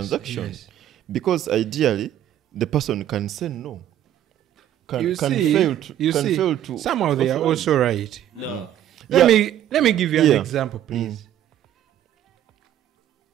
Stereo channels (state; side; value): quieter; left; 11.5 dB